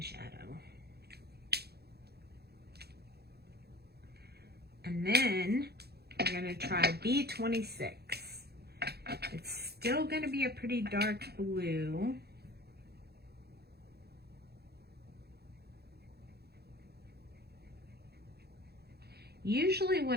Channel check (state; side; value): late; left; 0.47 ms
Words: shadow. And then we're going to try B26. It's still going to be a pretty dark blue. Usually